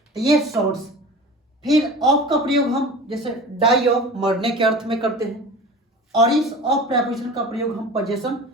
तो ये सोर्स। फिर ऑफ का प्रयोग हम जैसे डाई ऑफ, मरने के अर्थ में करते हैं। और इस ऑफ प्रेपोजिशन का प्रयोग हम पोजेशन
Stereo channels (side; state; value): both; normal; correlation 0.36